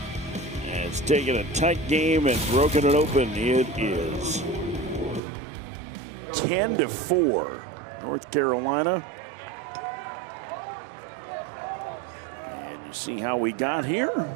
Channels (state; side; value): drops out; left; at 5.2 s